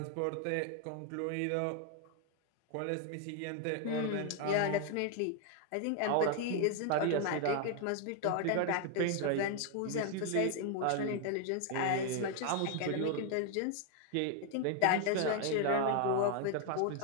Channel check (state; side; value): different; both; correlation 0.00